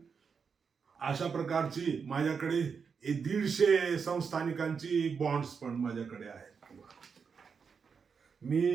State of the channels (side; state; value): left; quieter; 5.9 dB